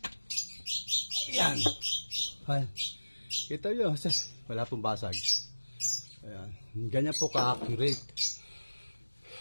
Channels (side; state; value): both; inverted; correlation -1.00